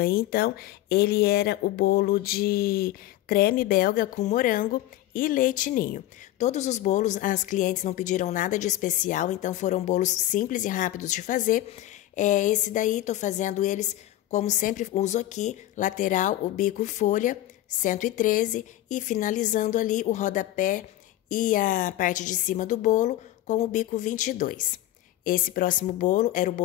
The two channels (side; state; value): right; quieter; 14.3 dB